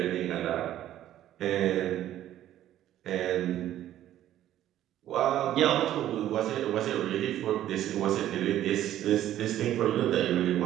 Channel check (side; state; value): left; quieter; 12.5 dB